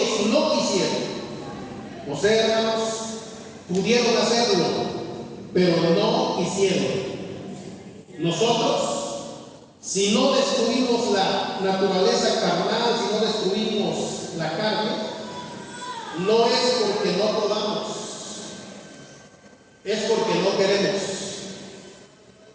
no quisieron. O sea, hermanos, pudieron hacerlo, pero no quisieron. Nosotros, si no destruimos la naturaleza carnal, si no destruimos la carne, no es porque no podamos, es porque no queremos.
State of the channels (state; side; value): identical; both; correlation 1.00